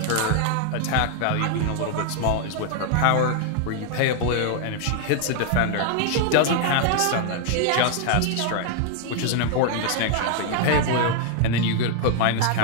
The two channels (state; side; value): different; both; correlation 0.00